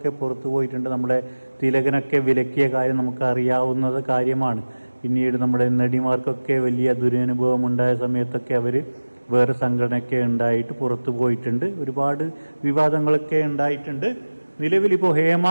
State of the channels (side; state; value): both; inverted; correlation -1.00